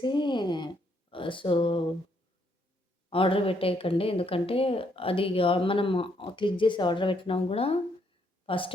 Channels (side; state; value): both; normal; correlation 0.72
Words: సో, ఆర్డర్ పెట్టేయకండి. ఎందుకంటే అది మనం క్లిక్ చేసి ఆర్డర్ పెట్టినా కూడా